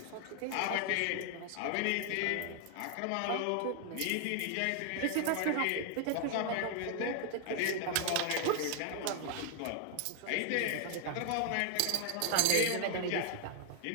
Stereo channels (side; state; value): both; different; correlation 0.00